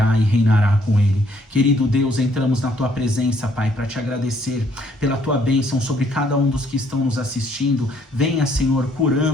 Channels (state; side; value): normal; both; correlation 0.67